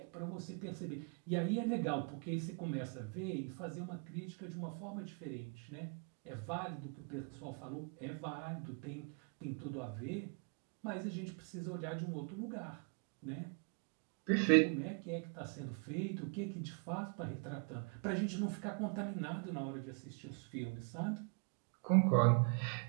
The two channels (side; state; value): left; quieter; 38.9 dB